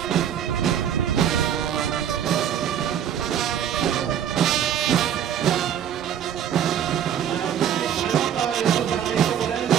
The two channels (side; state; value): left; quieter; 9.4 dB